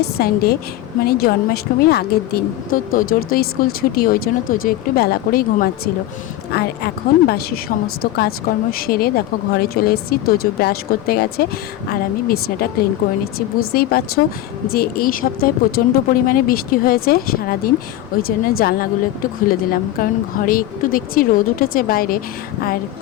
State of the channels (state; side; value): quieter; right; 14.0 dB